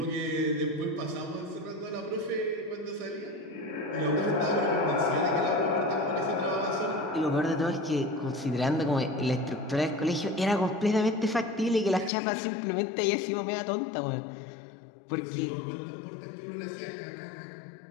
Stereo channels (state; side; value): drops out; right; at 12.1 s